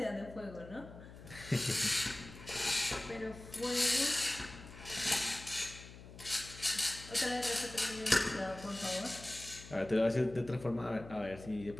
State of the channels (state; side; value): noise; left; hum, 16 dB below the sound